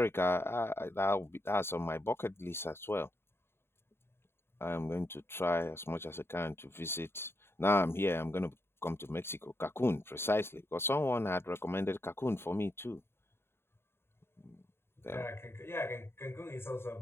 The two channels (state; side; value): late; right; 0.11 ms